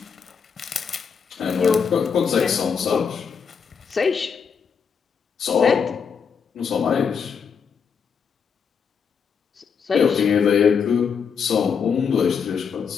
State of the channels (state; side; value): quieter; right; 6.4 dB